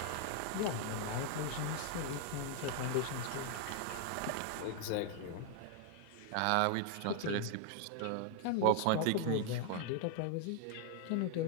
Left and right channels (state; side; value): different; both; correlation 0.00